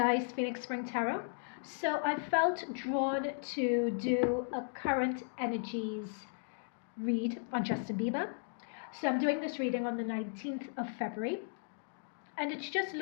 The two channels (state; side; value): silent; right; digital silence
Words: Phoenix Spring Tarot. So I felt drawn to do a current energies read on Justin Bieber. So I'm doing this reading on the 19th of February, and it's just